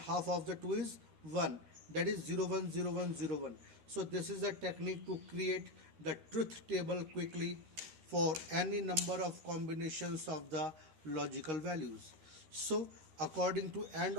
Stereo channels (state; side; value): late; left; 13 ms